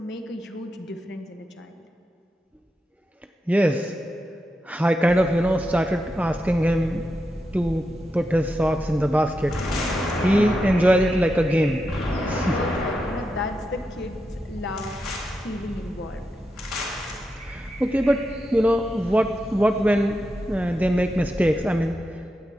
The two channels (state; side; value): normal; both; correlation 0.87